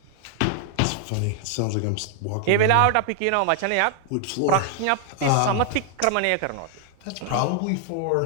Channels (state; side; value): different; both; correlation 0.00